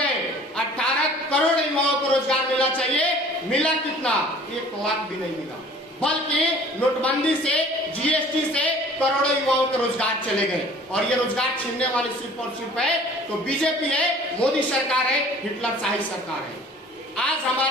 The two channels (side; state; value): both; normal; correlation 0.49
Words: 18 करोड़ युवाओं को रोजगार मिलना चाहिए, मिला कितना? 1 लाख भी नहीं मिला, बल्कि नोटबंदी से, जीएसटी से करोड़ों युवाओं के रोजगार चले गए। और ये रोजगार छीनने वाली सिर्फ और सिर्फ है तो बीजेपी है, मोदी सरकार है, हिटलरशाही सरकार है। आज